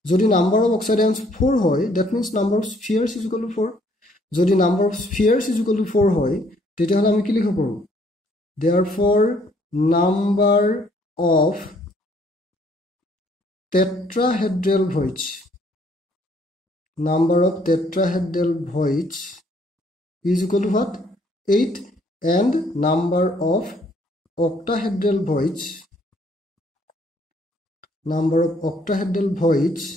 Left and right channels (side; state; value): both; normal; correlation 0.65